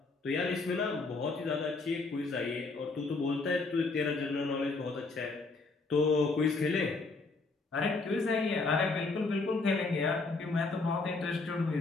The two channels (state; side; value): quieter; right; 3.7 dB